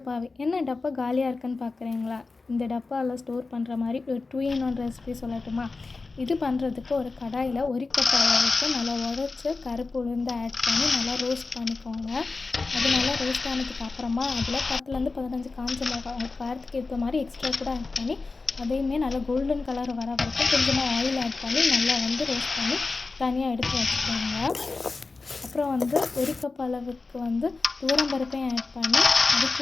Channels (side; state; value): right; quieter; 3.8 dB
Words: பாவி. என்ன டப்பா காலியாக இருக்குன்னு பார்க்குறீங்களா? இந்த டப்பாவில் ஸ்டோர் பண்ணுற மாதிரி ஒரு 2 in 1 ரெசிபி சொல்லட்டுமா? இது பண்ணுறதுக்கு ஒரு கடாயில் 1 கப் அளவுக்கு நல்லா உடச்சி கருப்பு உளுந்து ஆட் பண்ணி நல்லா ரோஸ்ட் பண்ணிக்கோங்க. அது நல்லா ரோஸ்ட் ஆனதுக்கு அப்புறமா அதில் 10லேருந்து 15 காஞ்ச மிளகாய் உங்கள் காரத்துக்கு ஏற்ற மாதிரி எக்ஸ்ட்ரா கூட ஆட் பண்ணி அதையுமே நல்லா கோல்டன் கலர் வர வரைக்கும் கொஞ்சமாக ஆயில் ஆட் பண்ணி நல்லா ரோஸ்ட் பண்ணி தனியாக எடுத்து வச்சுக்கோங்க. அப்புறம் 1 கப் அளவுக்கு துவரம்பருப்பையும் ஆட் பண்ணி அது